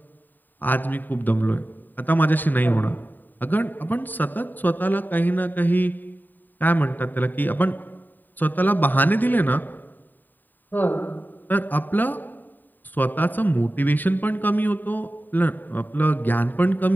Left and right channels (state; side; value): late; right; 0.089 ms